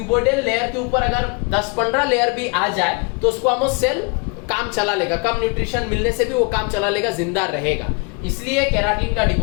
लेयर के ऊपर अगर 10-15 लेयर भी आ जाए तो स्क्वामोस सेल काम चला लेगा, कम न्यूट्रिशन मिलने से भी वो काम चला लेगा, जिंदा रहेगा. इसलिए केराटिन का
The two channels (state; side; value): quieter; right; 32.1 dB